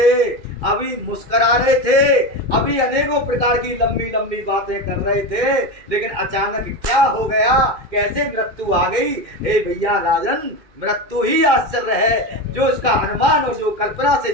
अभी मुस्करा रहे थे, अभी अनेकों प्रकार की लंबी लंबी बातें कर रहे थे, लेकिन अचानक क्या हो गया, कैसे मृत्यु आ गई? हे भैया राजन, मृत्यु ही आश्चर्य है। जो इसका अनुमान और जो कल्पना से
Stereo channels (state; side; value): late; left; 2.4 ms